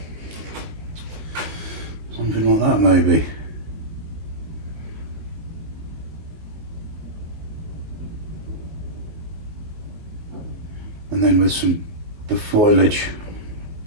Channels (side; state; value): left; late; 19 ms